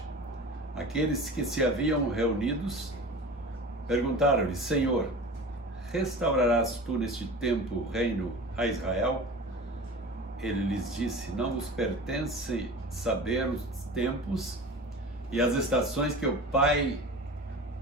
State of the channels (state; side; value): normal; both; correlation 0.35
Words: aqueles que se haviam reunidos perguntaram-lhe: Senhor, restaurarás tu neste tempo o reino a Israel? Ele lhes disse: não vos pertence saber os tempos e as estações que o Pai